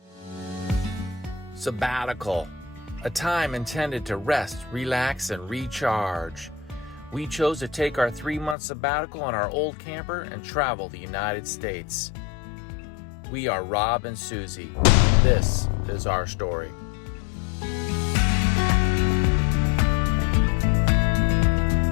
Sabbatical, a time intended to rest, relax, and recharge. We chose to take our 3-month sabbatical on our old camper and travel the United States. We are Rob and Susie, and this is our story.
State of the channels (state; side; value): drops out; right; at 8.6 s